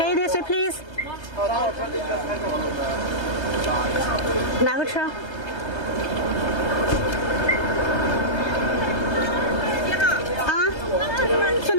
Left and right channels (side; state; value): right; late; 1.3 ms